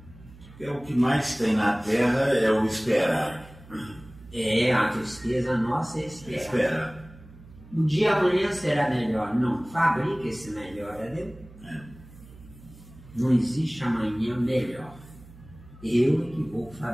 É o que mais tem na Terra é o esperar. É, a tristeza nossa é esperar. Esperar. O dia amanhã será melhor. Não, fabrica esse melhor, entendeu? Não existe amanhã melhor. Eu é que vou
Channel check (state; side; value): noise; right; hum, 20 dB below the sound